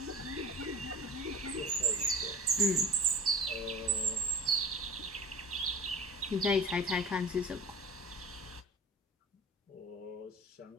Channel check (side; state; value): both; normal; correlation 0.35